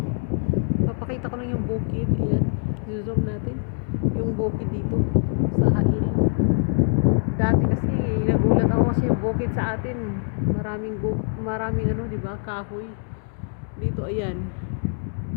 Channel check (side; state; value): right; silent; 62 dB below the other